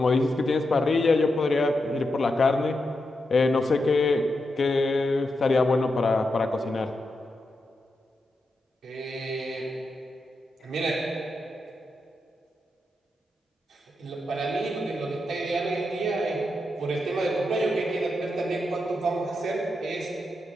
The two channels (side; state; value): both; normal; correlation 0.86